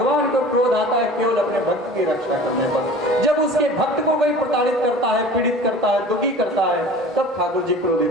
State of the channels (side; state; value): both; normal; correlation 0.42